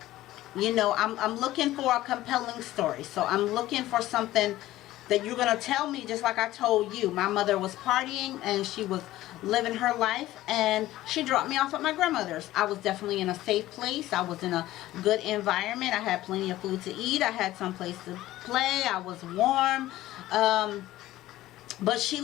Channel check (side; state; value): right; quieter; 15.6 dB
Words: you know, I'm looking for a compelling story. So I'm looking for something that you're going to tell me, just like I told you. My mother was partying and she was living her life, and she dropped me off at my grandmother's. I was definitely in a safe place. I was in a good environment. I had plenty of food to eat. I had some place to play. I was warm. But she